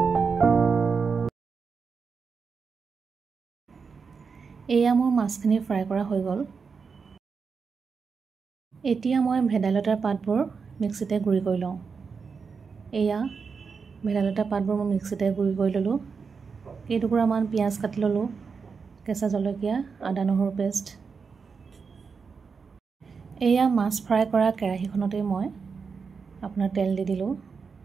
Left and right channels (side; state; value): left; quieter; 5.4 dB